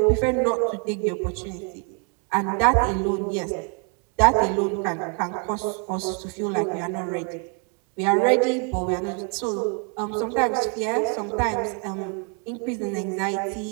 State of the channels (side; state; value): left; quieter; 39.4 dB